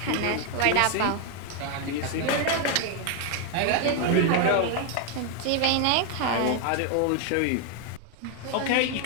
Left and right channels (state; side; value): different; both; correlation 0.01